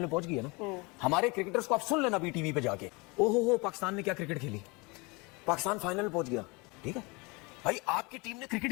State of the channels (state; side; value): quieter; right; 27.4 dB